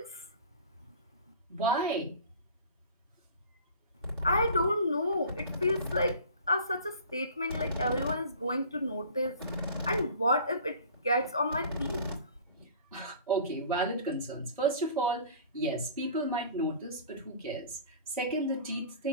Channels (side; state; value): both; inverted; correlation -0.44